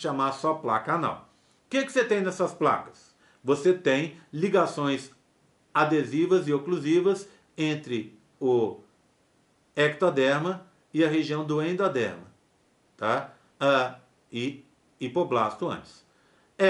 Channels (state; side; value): identical; both; correlation 1.00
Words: só placa anal. O que você tem nessas placas? Você tem ligações adesivas e oclusivas entre o ectoderma e a região do endoderma, tá? E hipoblasto antes.